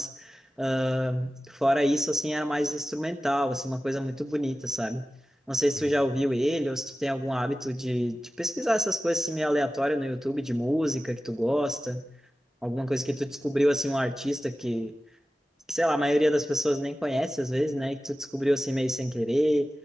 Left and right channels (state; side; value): normal; both; correlation 0.95